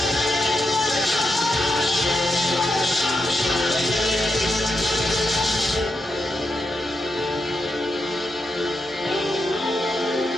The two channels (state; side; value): normal; both; correlation 0.84